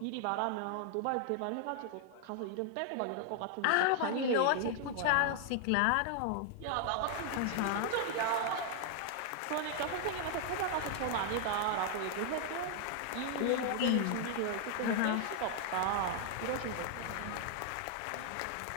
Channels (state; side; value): different; both; correlation 0.00